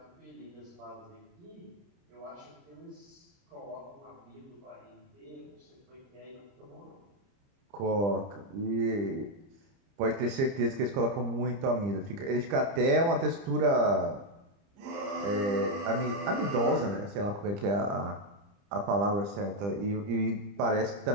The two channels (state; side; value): late; left; 30 ms